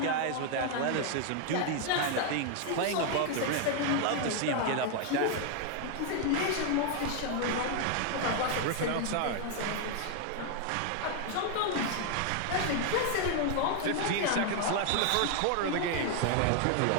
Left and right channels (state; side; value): different; both; correlation 0.00